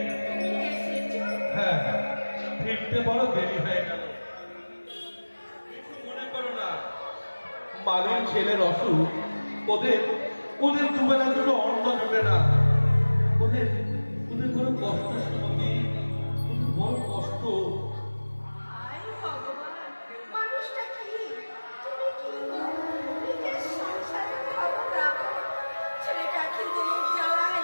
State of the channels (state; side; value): inverted; both; correlation -1.00